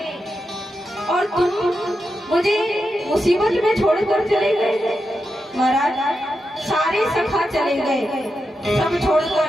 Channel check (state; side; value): normal; both; correlation 0.87